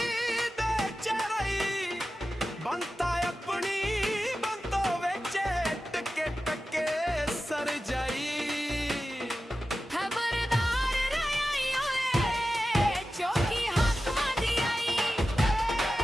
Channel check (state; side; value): normal; both; correlation 0.93